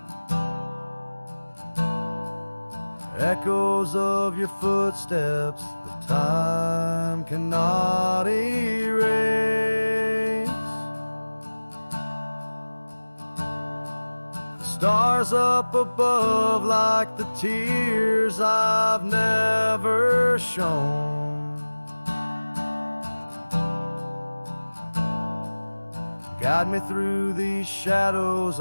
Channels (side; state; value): both; inverted; correlation -1.00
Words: Echoes of your footsteps that time cannot erase. The stars up above like the tears I've never shown. Guide me through these shadows